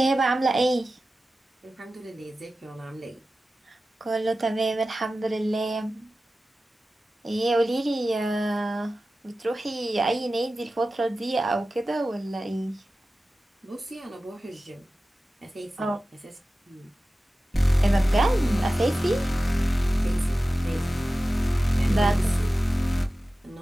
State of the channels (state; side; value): normal; both; correlation 0.95